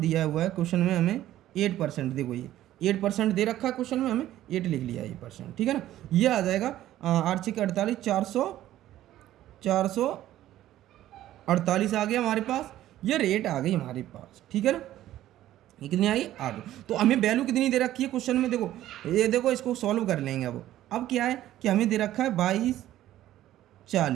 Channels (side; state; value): left; quieter; 13.6 dB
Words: हुआ है क्वेश्चन में हमें 8%, देखो ये 8% दे रखा है क्वेश्चन में, हमें 8 लिख लिया ये परसेंट, ठीक है ना। ये आ जाएगा 8 6 48, 448 आ गया हमारे पास, ये रेट आ गई हमारे पास, ठीक है ना। ये कितनी आई, 8। तो हमें वैल्यू कितनी दे रखी है क्वेश्चन में, देखो ये देखो इसको सॉल्व कर लेंगे। अब क्या है कि हमें दे रखा है